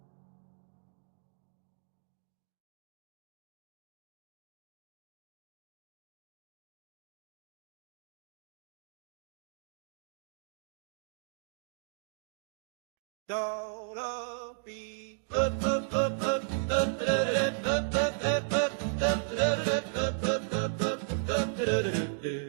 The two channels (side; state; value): left; silent; digital silence